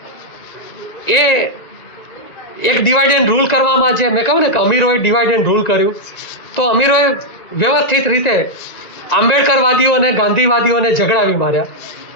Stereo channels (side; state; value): right; late; 1.9 ms